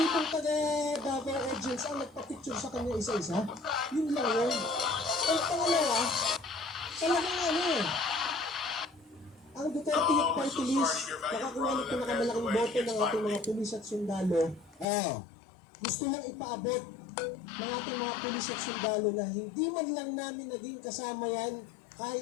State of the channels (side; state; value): right; drops out; at 14.9 s